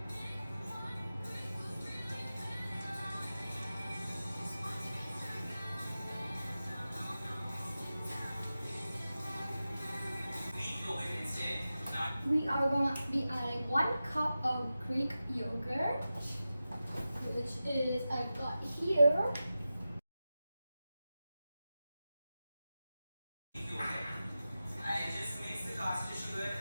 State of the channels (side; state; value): both; inverted; correlation -0.93